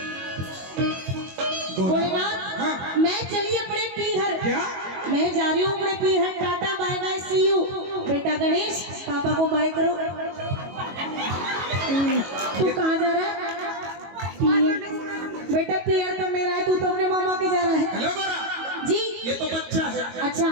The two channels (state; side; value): late; left; 22 ms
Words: भोलेनाथ मैं चली अपने पीहर। क्या? मैं जा रही हूँ अपने पीहर। Tata bye bye see you. बेटा गणेश पापा को बाय करो। तू कहाँ जा रहा है? पीहर। बेटा पीहर तो मेरा है, तू तो अपने मामा के जा रहा है। हेलो गोरा, जी ये तो बच्चा है, अच्छा